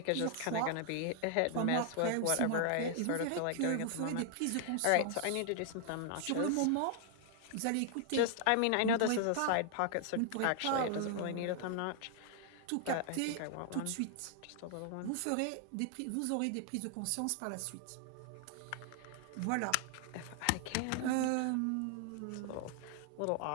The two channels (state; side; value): different; both; correlation 0.00